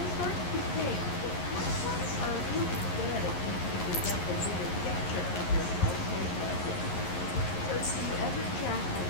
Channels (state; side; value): late; right; 11 ms